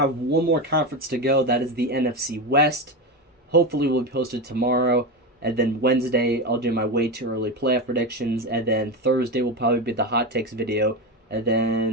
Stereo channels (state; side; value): normal; both; correlation 0.17